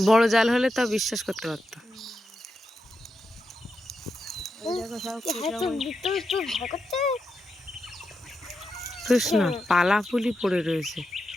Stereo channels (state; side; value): normal; both; correlation 0.87